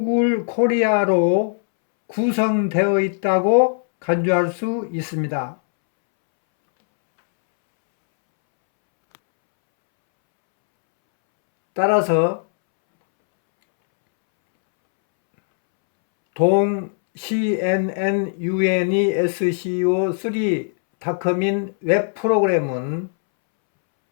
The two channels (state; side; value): silent; right; 66 dB below the other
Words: 코리아로 구성되어 있다고 간주할 수 있습니다. 따라서 동 CNN UNESCO3.com인 웹 프로그램은